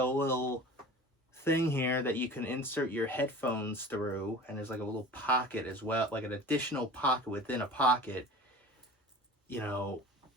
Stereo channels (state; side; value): normal; both; correlation 0.39